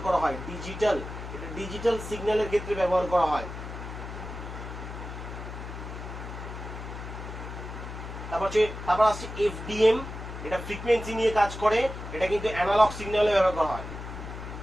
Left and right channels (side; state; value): left; noise; hum, 9 dB below the sound